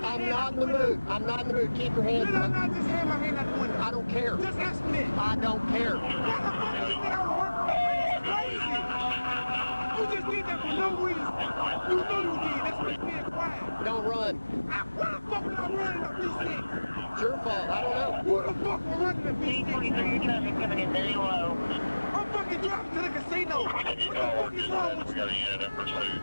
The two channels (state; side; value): inverted; both; correlation -1.00